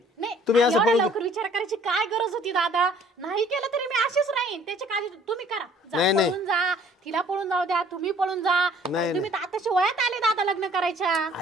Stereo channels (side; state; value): both; normal; correlation 0.56